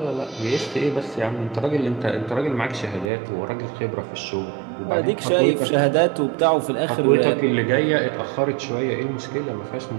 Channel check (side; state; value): left; drops out; at 3.1 s